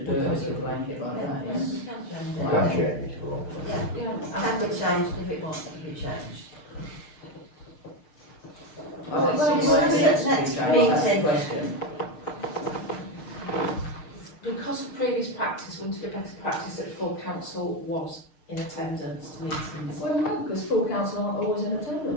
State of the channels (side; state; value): right; late; 6.5 ms